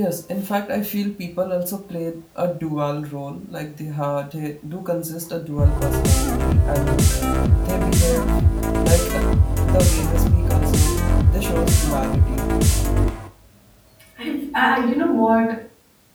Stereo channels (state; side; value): identical; both; correlation 1.00